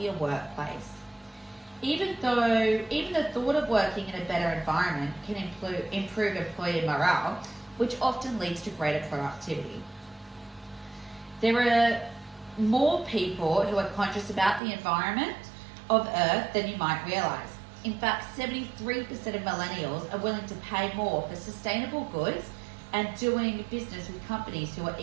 workplace. Even the thought of working in a better environment can improve employee morale, which often leads to greater productivity. There are more people who are conscious about the environment of Earth than you might realize. In fact, 73% of millennials are willing to pay more for sustainable goods and doing business with companies who are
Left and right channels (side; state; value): left; drops out; at 14.6 s